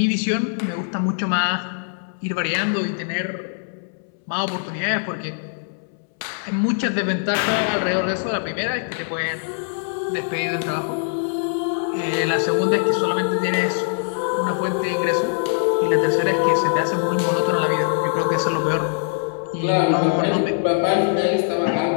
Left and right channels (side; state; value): right; silent; 64 dB below the other